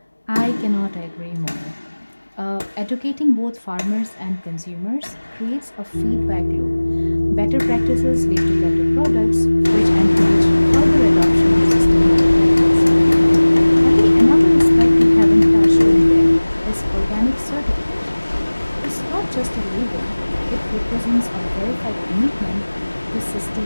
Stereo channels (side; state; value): both; inverted; correlation -1.00